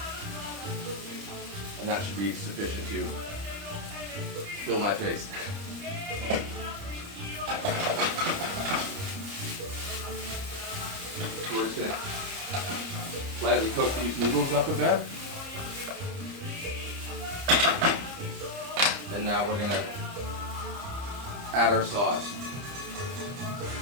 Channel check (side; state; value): left; late; 30 ms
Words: and that should be sufficient to fill my face. So we're just going to lightly cook these noodles up a bit. And now we're going to add our sauce.